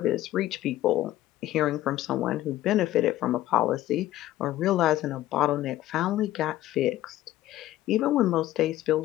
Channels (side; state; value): right; quieter; 14.5 dB